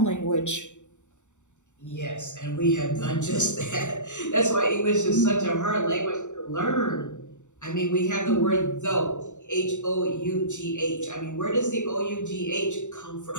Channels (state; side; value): late; right; 0.84 ms